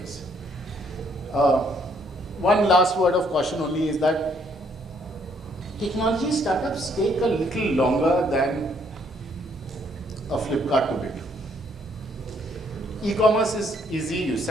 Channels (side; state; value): both; normal; correlation 0.68